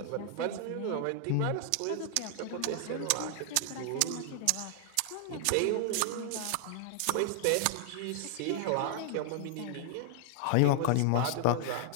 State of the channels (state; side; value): different; both; correlation 0.00